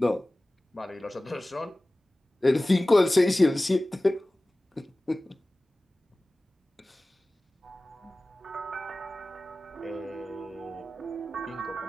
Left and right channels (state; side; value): normal; both; correlation 0.97